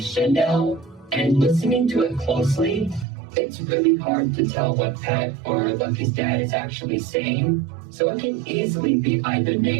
Chanel, and listening to it closely, it's really hard to tell what Pat or Lucky's dad is actually saying, so it can easily be either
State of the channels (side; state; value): left; drops out; at 3.1 s